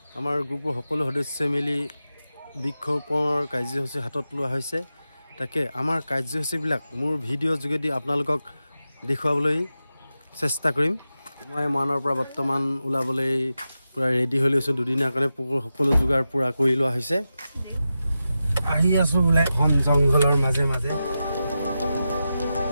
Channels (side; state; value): both; inverted; correlation -0.91